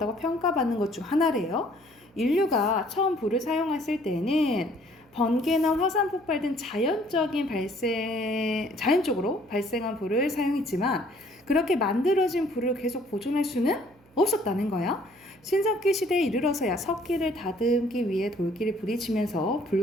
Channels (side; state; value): right; noise; hum, 30 dB below the sound